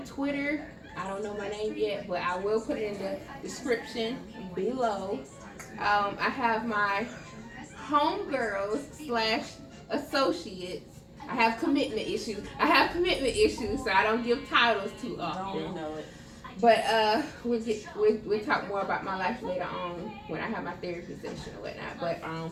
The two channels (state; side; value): identical; both; correlation 1.00